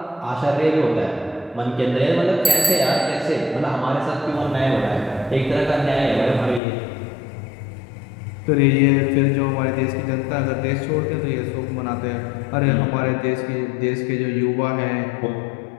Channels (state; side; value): drops out; right; at 6.6 s